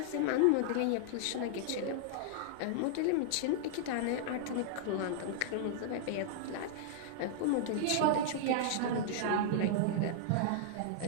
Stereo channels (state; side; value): different; both; correlation -0.01